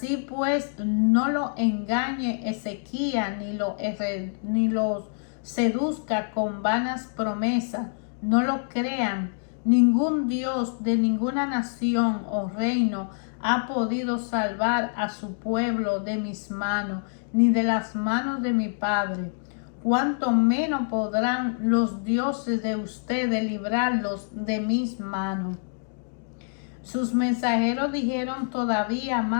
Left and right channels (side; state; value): right; silent; digital silence